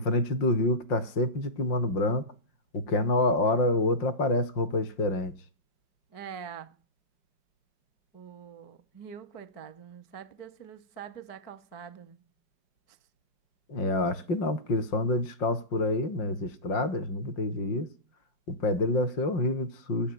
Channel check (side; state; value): right; late; 5.6 ms